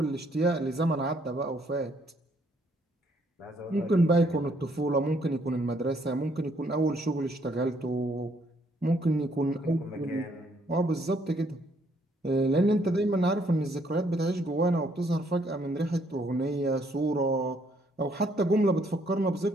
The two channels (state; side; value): normal; both; correlation 0.68